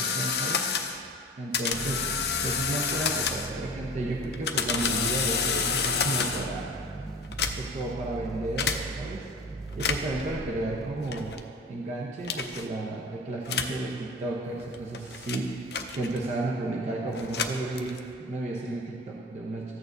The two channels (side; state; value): both; normal; correlation 0.37